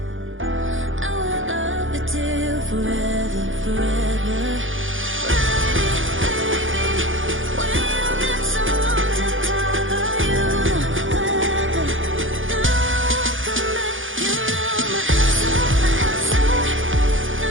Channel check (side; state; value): left; late; 0.58 ms